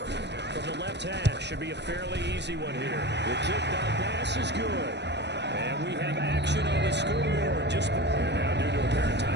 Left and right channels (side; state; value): left; late; 0.50 ms